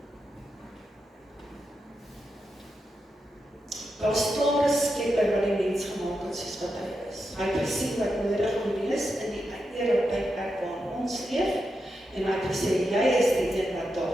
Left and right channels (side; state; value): both; normal; correlation 0.87